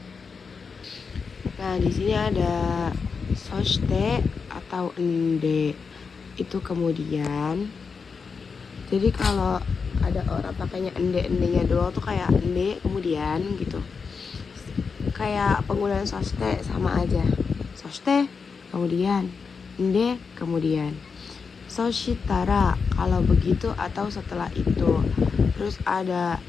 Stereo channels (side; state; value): right; quieter; 5.3 dB